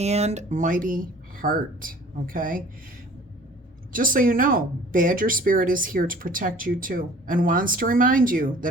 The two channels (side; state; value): both; normal; correlation 0.49